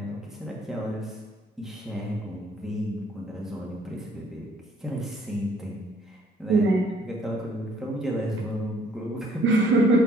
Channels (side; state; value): both; normal; correlation 0.61